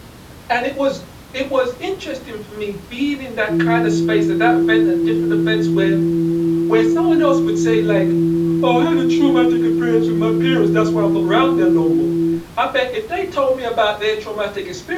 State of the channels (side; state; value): both; identical; correlation 1.00